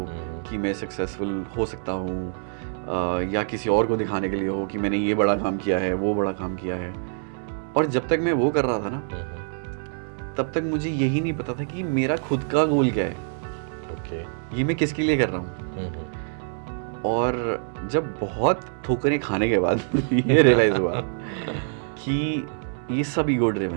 कि मैं सक्सेसफुल हो सकता हूँ, या किसी और को दिखाने के लिए हो कि मैंने ये बड़ा काम किया है, वो बड़ा काम किया है. और जब तक मैं वो कर रहा था ना तब तक मुझे यही नहीं पता था कि मेरा खुद का गोल क्या है, Okay. ये मैं किसके लिए कर रहा हूँ. और जब बहुत ठोकरें खाने के बाद ये रियलाइज़ हुआ कि ये सब ईगो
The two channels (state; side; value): silent; left; digital silence